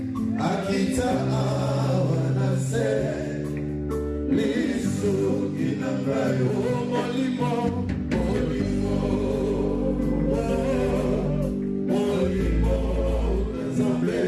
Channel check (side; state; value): both; identical; correlation 1.00